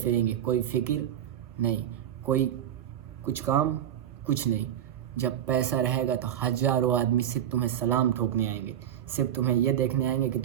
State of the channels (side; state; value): left; quieter; 10.4 dB